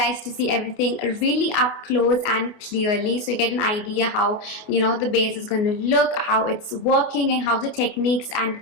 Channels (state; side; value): late; right; 29 ms